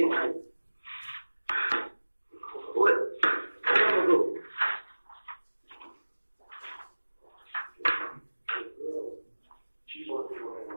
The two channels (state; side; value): inverted; both; correlation -1.00